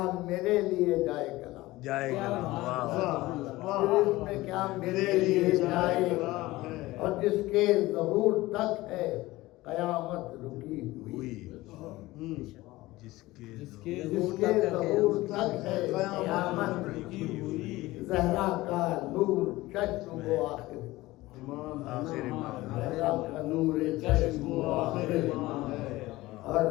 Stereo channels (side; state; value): right; quieter; 18.7 dB